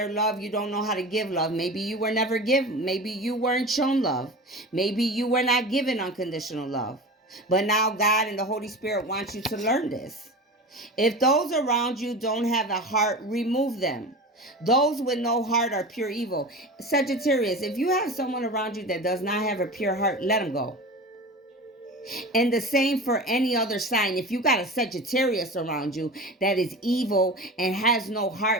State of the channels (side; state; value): both; normal; correlation 0.31